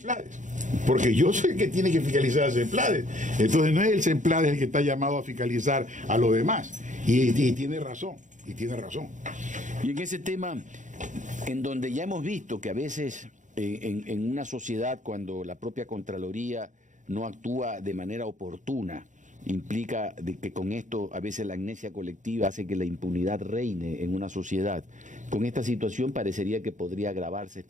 Porque yo soy el que tiene que fiscalizar el CEMPLADES. Entonces no es el CEMPLADES el que está llamado a fiscalizar a los demás. Y tiene razón, Y en ese tema, en donde ya hemos visto que a veces en una sociedad, cuando la propia Contraloría no actúa de manera oportuna, implica de que con esto a veces la amnesia colectiva hace que la impunidad reine en una sociedad. Con esta situación parecería que podría agravarse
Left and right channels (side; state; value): left; late; 0.36 ms